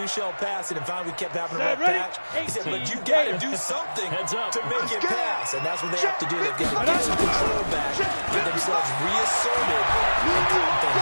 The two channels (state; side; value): inverted; both; correlation -1.00